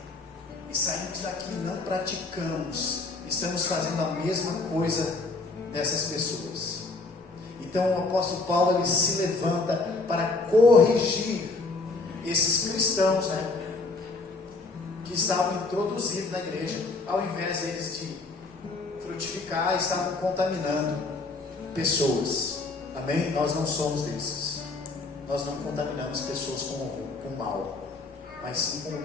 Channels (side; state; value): right; quieter; 3.6 dB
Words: e saímos daqui e não praticamos, estamos fazendo a mesma coisa dessas pessoas. Então o apóstolo Paulo, ele se levanta para corrigir esses cristãos, né, que estavam introduzidos na igreja, ao invés deles de frutificar, estavam contaminando pessoas. Amém? Nós não somos desses. Nós não contaminamos pessoas com o mal, mas sim com o